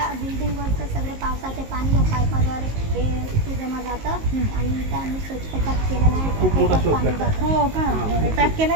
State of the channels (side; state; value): left; late; 19 ms